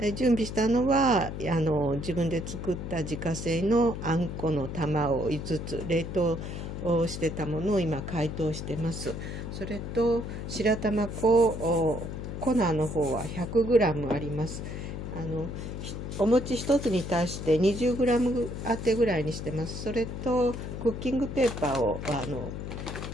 準備したのは自分で作った自家製のあんこの玉を5つ冷凍をしてたものを今解凍してます。それと白玉粉粉の方は 100g あります。お餅1つに対して 20g 当てぐらいにしてます。それとクッキングペーパーを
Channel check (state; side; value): noise; left; hum, 6 dB below the sound